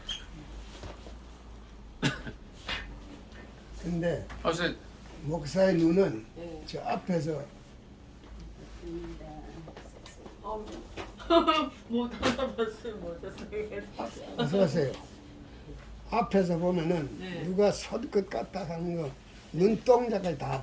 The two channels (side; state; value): both; identical; correlation 1.00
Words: 근데 어서 목사의 눈은 예. 저 앞에서 못 알아봤어요. 못했어요. 어서 오세요. 앞에서 보면은 네. 누가 설 것 같다 하는 거 눈동자까지